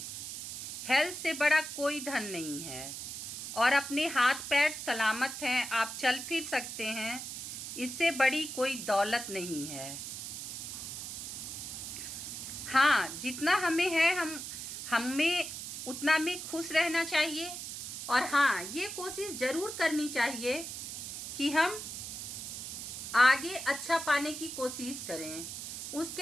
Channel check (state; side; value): noise; right; hiss, 7 dB below the sound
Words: हेल्थ से बड़ा कोई धन नहीं है, और अपने हाथ पैर सलामत हैं, आप चल फिर सकते हैं, इससे बड़ी कोई दौलत नहीं है। हाँ, जितना हमें है हमें उतना में खुश रहना चाहिए। और हाँ, ये कोशिश ज़रूर करनी चाहिए कि हम आगे अच्छा पाने की कोशिश करें,